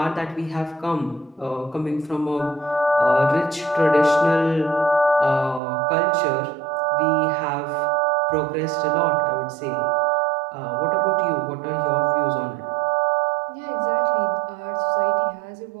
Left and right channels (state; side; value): drops out; left; at 5.6 s